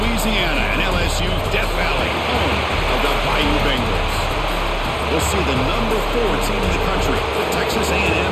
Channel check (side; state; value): both; identical; correlation 1.00